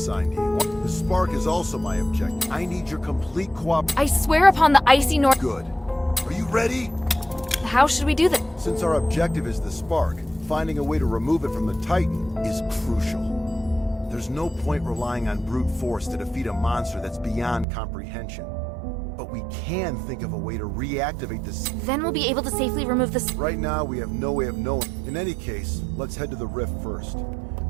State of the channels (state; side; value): drops out; left; at 17.7 s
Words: to you. The spark is also my objective. I need your complete cooperation. I swear upon the icy north... Good. Are you ready? How should we do that? Since our objective is the spark, finding a way to remove it from the Titan is crucial. There's no point relying on brute force to defeat a monster that's beyond comprehension. But we can think of a way to reactivate this. Then we'll be able to safely remove this. Right now, we have no way of knowing. In any case, let's head to the rift first.